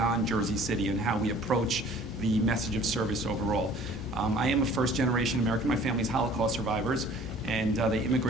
Jersey City and how we approach the message of service overall. I am a first-generation American. My family's Holocaust survivors, and they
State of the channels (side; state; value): both; normal; correlation 0.51